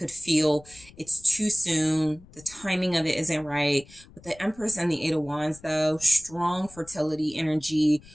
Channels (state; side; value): noise; left; rumble, 23 dB below the sound